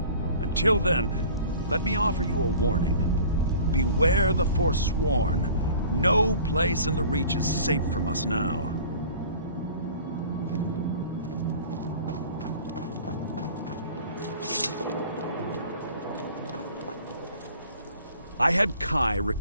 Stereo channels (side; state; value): both; inverted; correlation -0.46